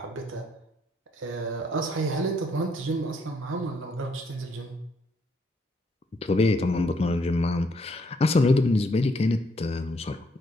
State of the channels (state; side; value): normal; both; correlation 0.71